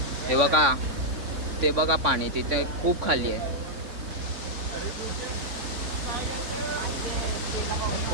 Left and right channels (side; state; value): left; late; 3.6 ms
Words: हे बघा, ते बघा पाणी तिथे खूप खाली आहे.